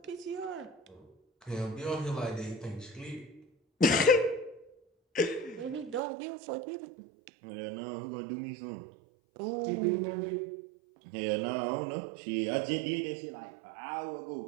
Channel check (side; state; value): left; drops out; at 6.0 s